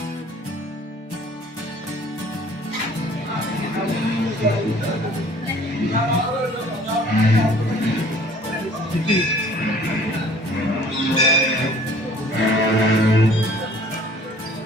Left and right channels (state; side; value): normal; both; correlation 0.53